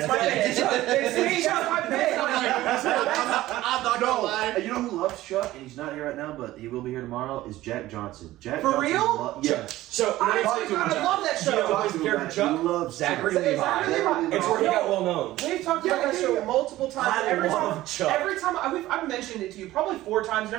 my pick. It's me. That's my pick. I'm not gonna lie. You know who loves Chuck, and he's not here right now, but he will be here tomorrow, is Jack Johnson. Jack For Johnson real? yes. So I talk to him. love that You know show. who's the character He Chuck? loves Zachary Chuck. Levi. Zachary Levi. It's where he got well known. We've talked about that show multiple times. I Every love time, Chuck. every time I've mentioned it to you probably 4 times, and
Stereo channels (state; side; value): quieter; left; 16.0 dB